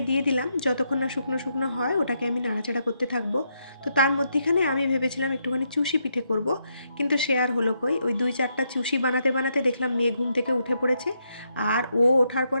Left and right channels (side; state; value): both; inverted; correlation -0.79